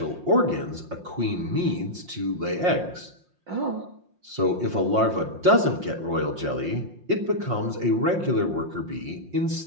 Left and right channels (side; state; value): left; late; 5.6 ms